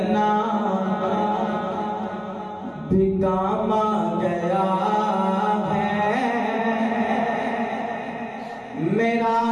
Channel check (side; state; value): both; identical; correlation 1.00